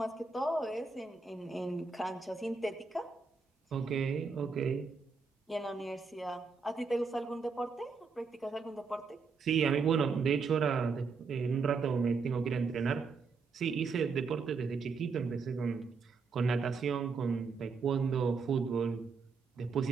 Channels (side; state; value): left; quieter; 4.9 dB